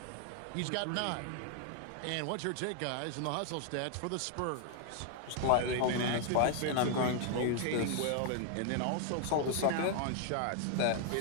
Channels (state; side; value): different; both; correlation 0.01